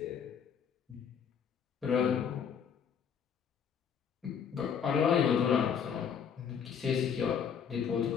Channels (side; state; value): right; quieter; 7.4 dB